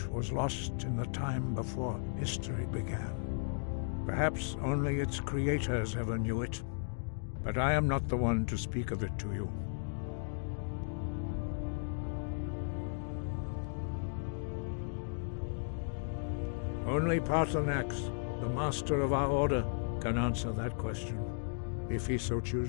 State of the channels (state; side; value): silent; right; digital silence